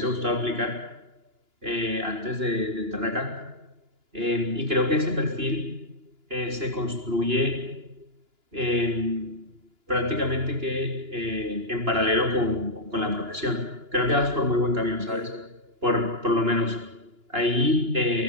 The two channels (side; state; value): left; late; 2.9 ms